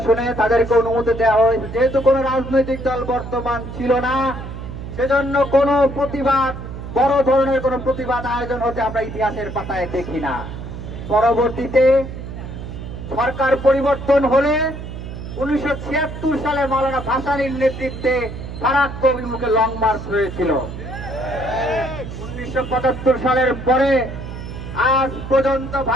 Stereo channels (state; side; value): noise; right; hum, 9 dB below the sound